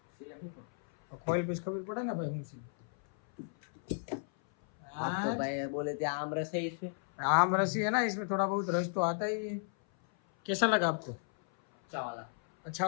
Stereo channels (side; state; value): right; silent; 55 dB below the other